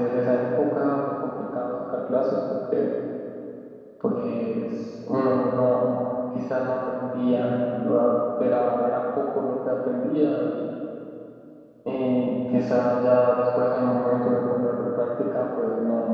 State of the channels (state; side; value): identical; both; correlation 1.00